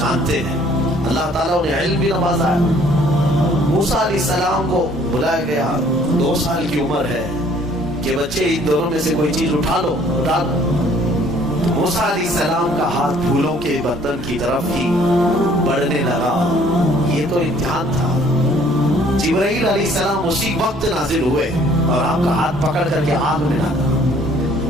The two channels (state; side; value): normal; both; correlation 0.59